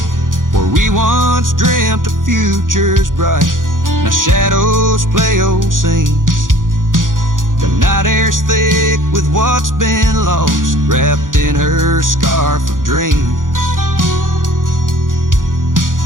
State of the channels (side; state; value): left; late; 0.89 ms